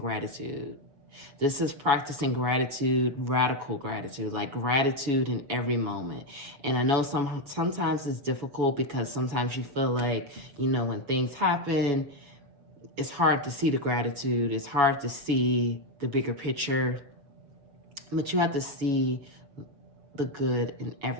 This is practicing gratitude, radical gratitude, like gratitude in every moment. And I know sometimes it's difficult because sometimes you feel like, when things happen, it's hard to see the gratitude. It's hard to see the bigger picture. But you have to see the good in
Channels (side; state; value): left; late; 7.1 ms